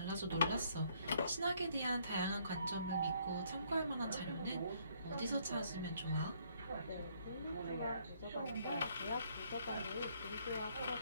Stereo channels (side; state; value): both; inverted; correlation -0.67